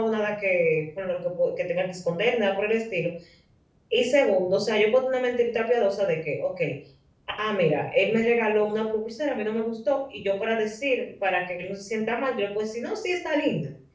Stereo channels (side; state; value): both; identical; correlation 1.00